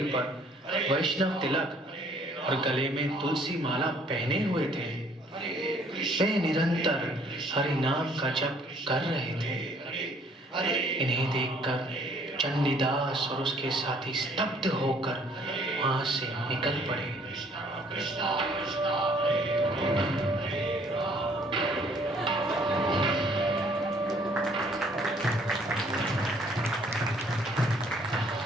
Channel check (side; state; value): both; normal; correlation 0.61